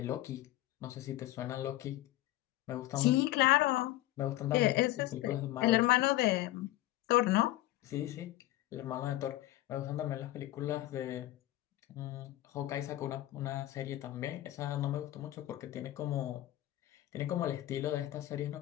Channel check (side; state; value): right; quieter; 15.8 dB